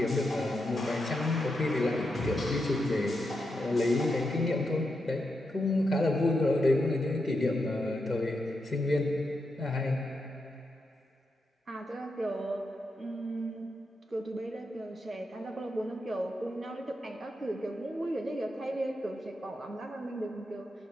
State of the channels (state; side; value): normal; both; correlation 0.85